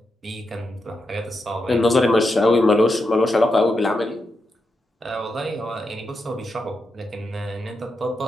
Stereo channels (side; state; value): both; normal; correlation 0.86